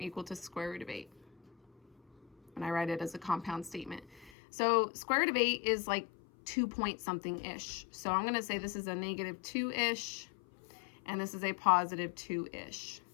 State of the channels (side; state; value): right; drops out; at 4.3 s